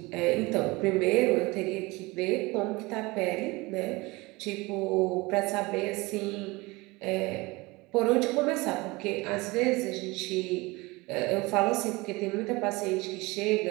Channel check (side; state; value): left; quieter; 23.2 dB